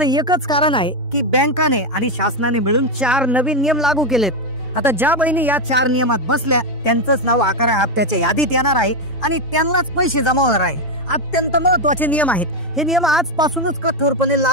एकच कारण आहे की बँकाने आणि शासनाने मिळून 4 नवीन नियम लागू केलेत। आता ज्या बहिणी या 4 नियमात बसल्या त्यांचंच नाव 11व्या हप्त्याच्या यादीत येणार आहे आणि त्यांनाच पैसे जमा होणार आहे। अत्यंत महत्वाचे नियम आहेत। हे नियम आजपासूनच कठोरपणे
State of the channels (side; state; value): both; normal; correlation 0.06